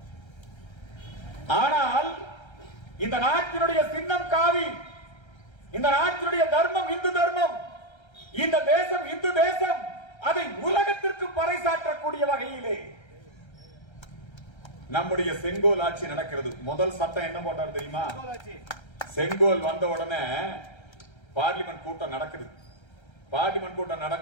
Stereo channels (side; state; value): right; late; 1.3 ms